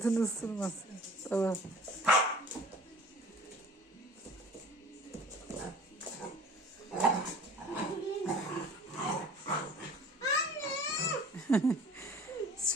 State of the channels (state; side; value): normal; both; correlation 0.47